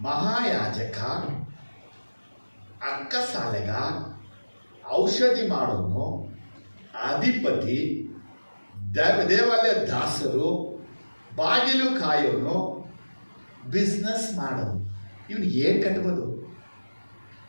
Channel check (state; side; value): inverted; both; correlation -1.00